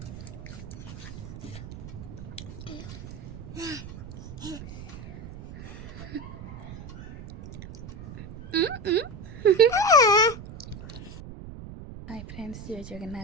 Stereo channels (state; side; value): noise; right; rumble, 12 dB below the sound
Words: hi friends, जय